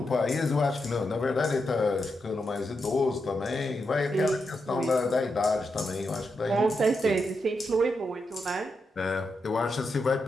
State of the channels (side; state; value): both; normal; correlation 0.85